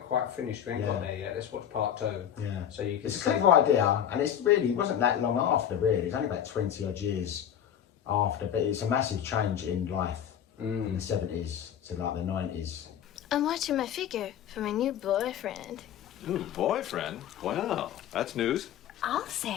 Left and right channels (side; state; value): right; quieter; 9.6 dB